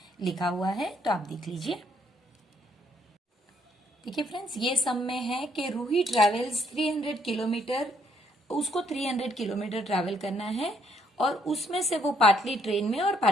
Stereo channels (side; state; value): both; normal; correlation 0.70